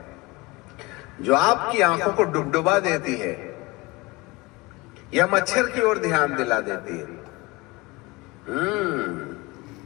जो आपकी आंखों को डुबडुबा देती है या मच्छर की ओर ध्यान दिला देती है।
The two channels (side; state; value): right; quieter; 23.6 dB